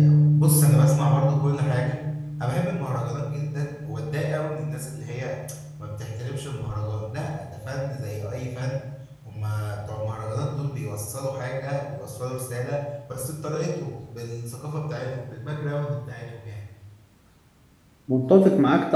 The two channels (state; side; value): identical; both; correlation 1.00